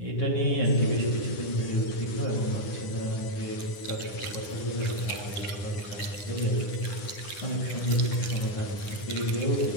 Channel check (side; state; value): right; late; 10 ms